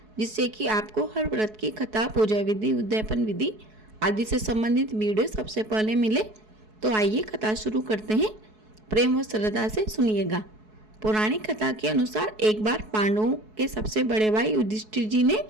जिससे कि आपको हर व्रत की कथा, पूजा विधि, उद्यापन विधि आदि से संबंधित वीडियो सबसे पहले मिले। तो आइए कथा शुरू करते हैं। प्रेम व श्रद्धा से सुनिएगा। पौराणिक कथा के अनुसार एक बार पांडवों के सबसे बड़े भाई युधिष्ठिर जी ने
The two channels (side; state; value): left; late; 4.7 ms